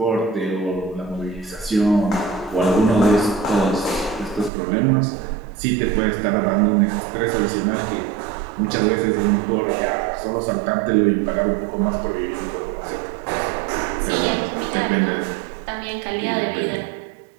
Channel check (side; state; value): left; drops out; at 4.5 s